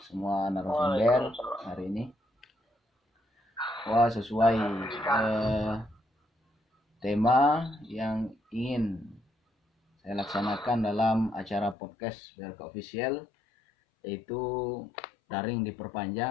semua narasumber hari ini. Wah, sesuai tema yang ingin saya laksanakan dalam acara podcast BRK Official, yaitu daring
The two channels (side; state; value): right; drops out; at 11.8 s